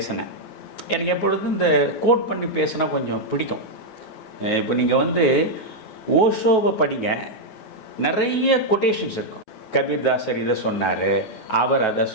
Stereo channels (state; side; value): late; right; 9.3 ms